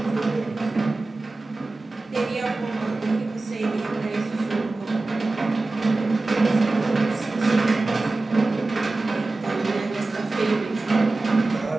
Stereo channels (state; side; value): quieter; left; 3.3 dB